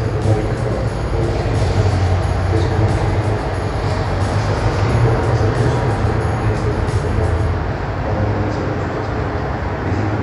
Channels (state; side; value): identical; both; correlation 1.00